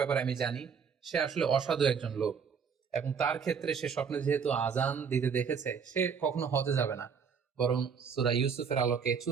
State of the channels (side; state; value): left; quieter; 6.5 dB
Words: আমি জানি, সে আসলে অসাধু একজন লোক এবং তার ক্ষেত্রে সে স্বপ্নে যেহেতু আজান দিতে দেখেছে, সে কখনো হজে যাবে না, বরং সূরা ইউসুফের আলোকে